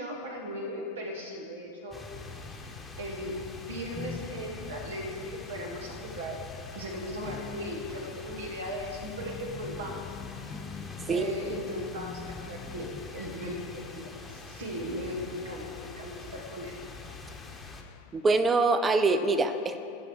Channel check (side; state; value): both; normal; correlation 0.44